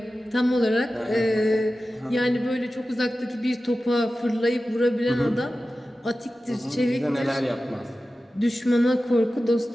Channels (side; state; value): both; normal; correlation 0.94